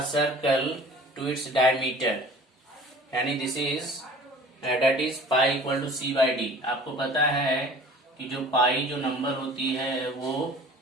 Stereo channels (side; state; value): both; normal; correlation 0.46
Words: circle to its diameter, यानी this is that is pi equal to c/d। आपको पता है कि जो पाई जो नंबर होती है वो